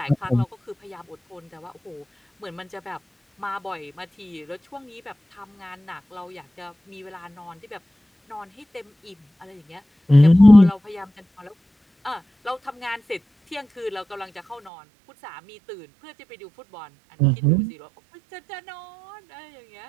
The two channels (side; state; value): left; drops out; at 14.7 s